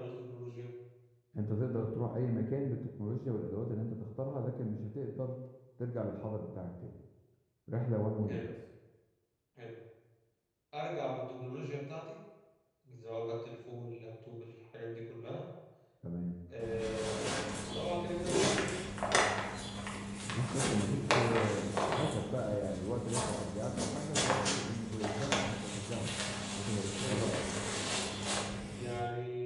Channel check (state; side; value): identical; both; correlation 1.00